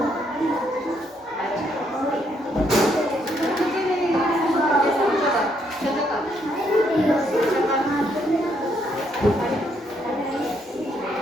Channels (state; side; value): normal; both; correlation 0.73